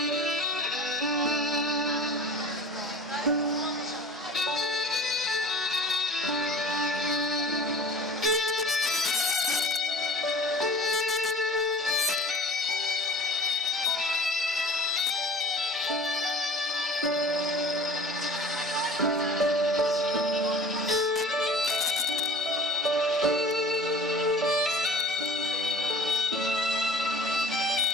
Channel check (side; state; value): both; normal; correlation 0.41